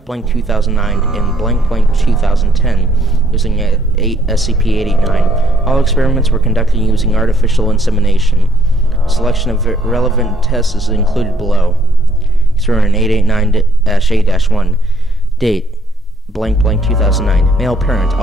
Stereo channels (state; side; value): normal; both; correlation 0.67